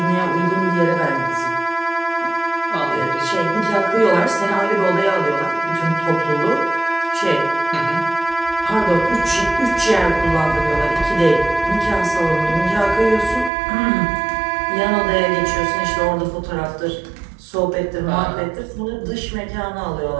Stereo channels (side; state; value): left; drops out; at 13.5 s